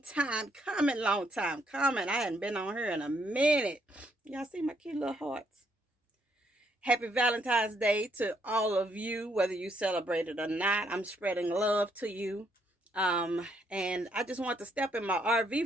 time coming, I hadn't been on here in a minute. Y'all see my cute little hearts? Happy Valentine's Day to all of you, whether you celebrate it or not. I'm spreading love to you. And I just want to step in my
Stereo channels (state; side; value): normal; both; correlation 0.72